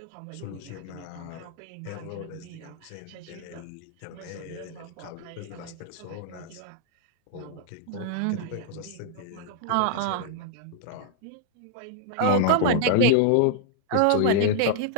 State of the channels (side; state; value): both; different; correlation -0.01